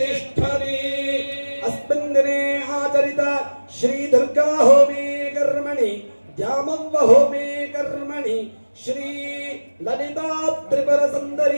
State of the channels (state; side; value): inverted; both; correlation -1.00